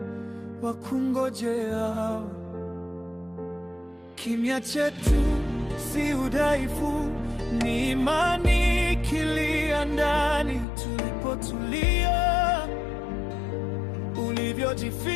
wakungojeao. Kimya chetu si udhaifu, ni imani ikilia ndani. Tulipotulia,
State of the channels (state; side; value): drops out; right; at 10.7 s